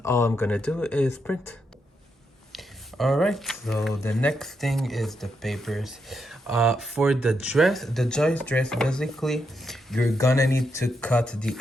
all I'm gonna do is print. All right, so the next thing is the papers. For the dress, the Joyce dress, basically, you're gonna need to cut the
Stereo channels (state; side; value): normal; both; correlation 0.82